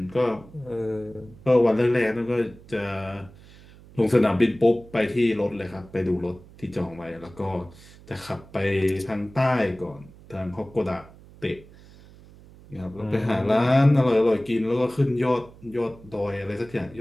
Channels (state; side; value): noise; right; hum, 22 dB below the sound